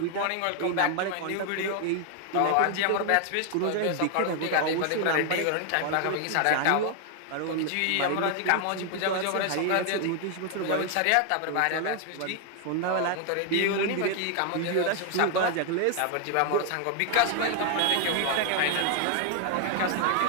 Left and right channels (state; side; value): different; both; correlation 0.00